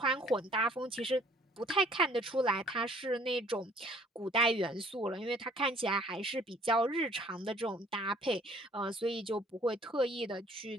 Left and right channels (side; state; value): both; normal; correlation 0.57